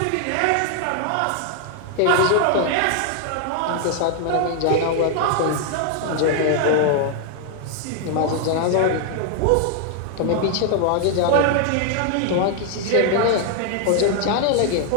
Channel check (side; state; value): both; different; correlation 0.00